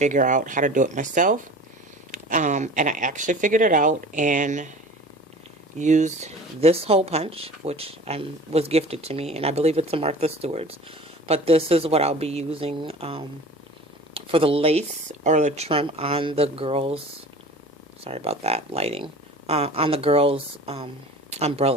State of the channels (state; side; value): normal; both; correlation 0.40